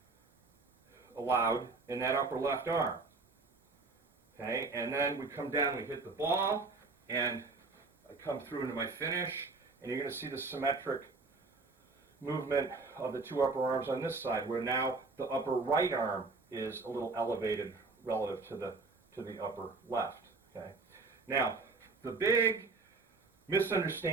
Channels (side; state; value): left; quieter; 3.9 dB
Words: allowed in that upper left arm. Okay, and then we come down, we hit the ball, and I come through into my finish, and you're going to see the symmetric movement of the two upper arms on this side, where now the upper right arm is a little elevated relative to the upper left. Okay, now the big